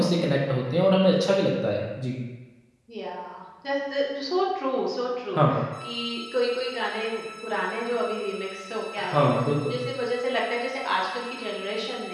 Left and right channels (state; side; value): identical; both; correlation 1.00